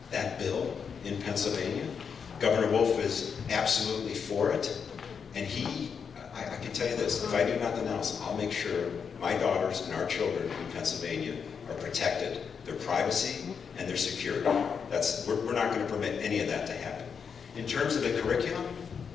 that bill in Pennsylvania. Governor Wolf is absolutely for it. And I can tell you this, if I do nothing else, I'll make sure my daughters and our children in Pennsylvania are protected, their privacy and their security. We're not going to permit any of that to happen. In terms of the curriculum,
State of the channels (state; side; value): quieter; right; 6.5 dB